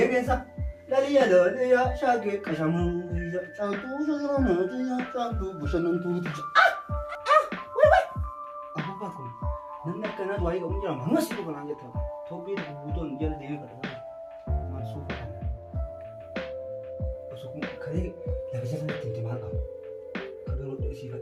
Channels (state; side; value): identical; both; correlation 1.00